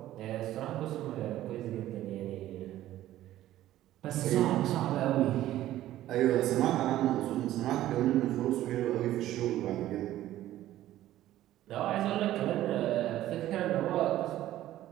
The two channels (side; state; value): left; quieter; 13.9 dB